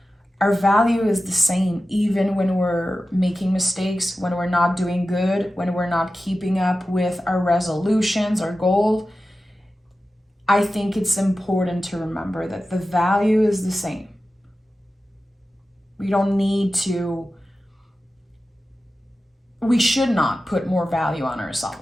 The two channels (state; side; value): normal; both; correlation 0.94